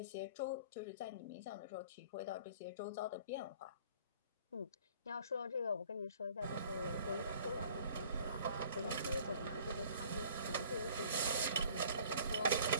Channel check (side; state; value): both; inverted; correlation -0.52